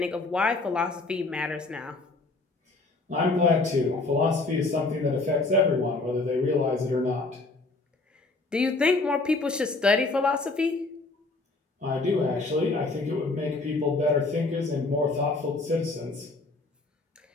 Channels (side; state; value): right; quieter; 3.3 dB